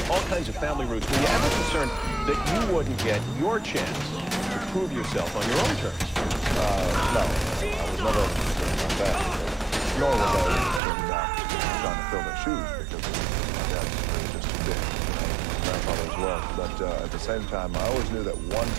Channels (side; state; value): left; drops out; at 10.8 s